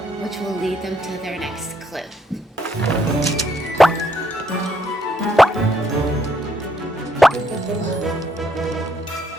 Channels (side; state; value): both; normal; correlation 0.73